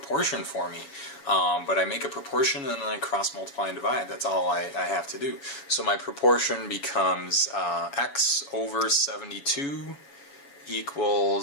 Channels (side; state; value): right; late; 7.2 ms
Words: for me. But I make a proportion and then I cross multiply and divide. That's all I have to do. So my proportion becomes x over 72